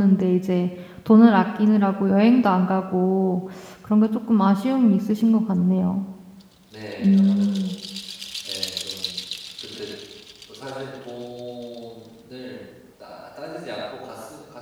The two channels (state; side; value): identical; both; correlation 1.00